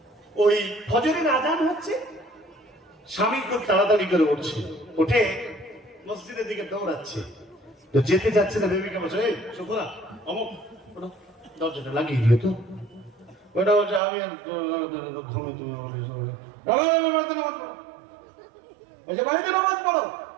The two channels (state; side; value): drops out; left; at 14.0 s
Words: ওই ফজরের আজান হচ্ছে, স্বামী খুব তাড়াতাড়ি করে উঠছে, উঠে মসজিদের দিকে দৌড়াচ্ছে, তো যেতে যাচ্ছে না বেবিকে বলছে এই শুকুরা অমুক ওটা দরজাটা লাগিয়ে দিও তো ওটা বলছে আমি আর ঘুমে তুমি বলছে বাড়িতে নামাজ পড়ো